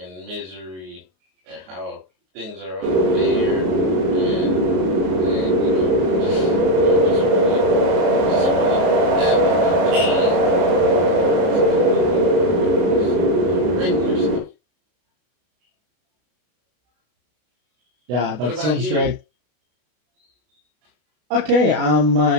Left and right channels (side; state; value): left; late; 33 ms